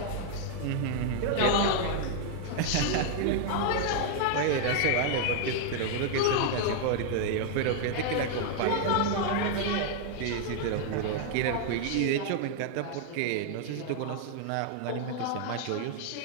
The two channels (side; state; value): both; different; correlation 0.00